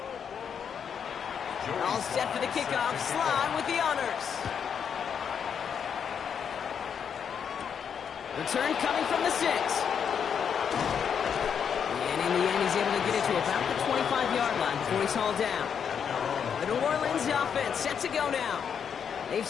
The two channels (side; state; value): right; quieter; 7.4 dB